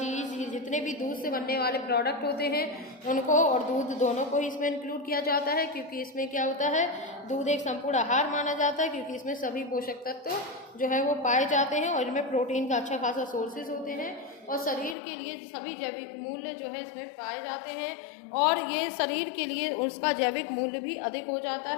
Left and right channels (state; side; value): drops out; right; at 15.0 s